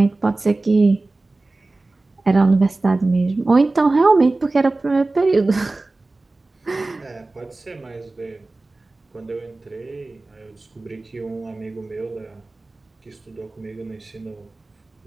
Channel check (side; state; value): left; quieter; 3.2 dB